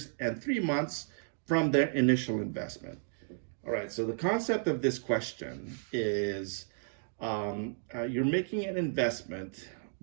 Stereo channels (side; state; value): left; silent; digital silence